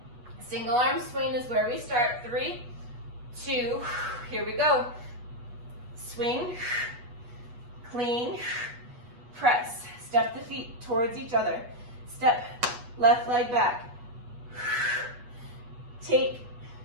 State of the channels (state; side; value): late; left; 8.2 ms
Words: Single arm swing is where we start. 3, 2, here we go. Swing, clean, press. Step the feet towards each other. Step left leg back. Take